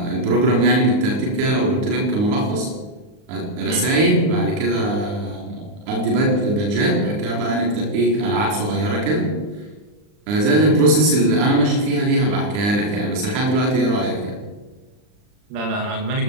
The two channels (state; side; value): late; left; 39 ms